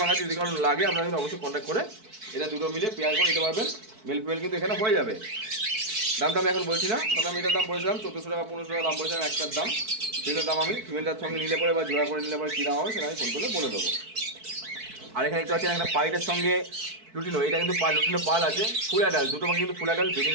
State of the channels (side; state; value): left; late; 4.6 ms